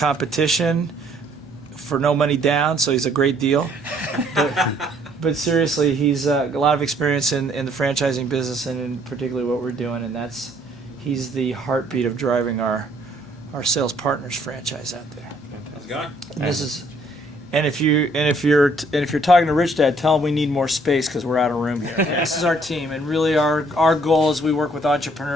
for no money down, so he's a great deal. But seriously, he's a lot of experience in the franchising business, and in particularly what we're doing, and he's the heartbeat of driving our Sales Partners franchise out there. How's it going? And this is, and if you're talking to Rich Dad, tell him we need more space because we're out of room here. This is our team, and really our goal is we work with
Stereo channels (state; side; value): normal; both; correlation 0.64